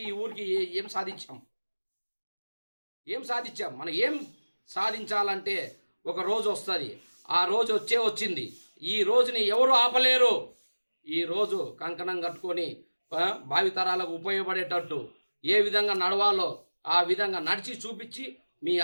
ఈ ఊరికి ఏం సాధించాం, మనం ఏం సాధించాలంటే ఒక రోజు వస్తుంది. ఆ రోజు వచ్చింది. ఈ రోజుని ఎవరు ఆపలేరు. ఈ రోజు కంకణం కట్టుకొని భావితరాలకు ఉపయోగపడేటట్టు ఏ విధంగా నడవాలో ఆ విధంగా నడిచి చూపించి మీ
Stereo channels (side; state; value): both; inverted; correlation -1.00